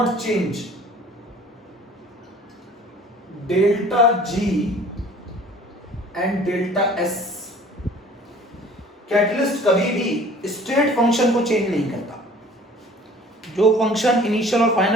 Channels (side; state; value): both; normal; correlation 0.50